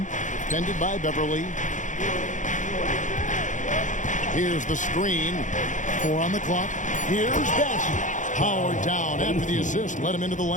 defended by Beverly. Here's the screen. 4 on the clock. Here's Bassey. Powered down after the assist. Let him into the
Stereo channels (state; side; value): late; right; 0.36 ms